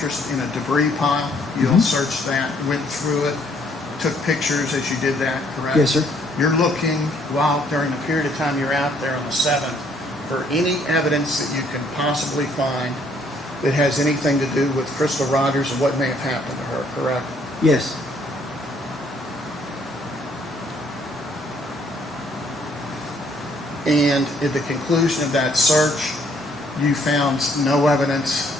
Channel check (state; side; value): normal; both; correlation 0.65